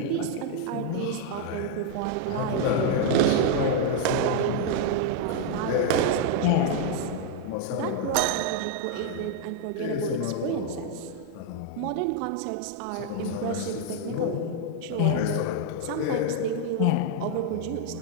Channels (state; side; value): different; both; correlation 0.00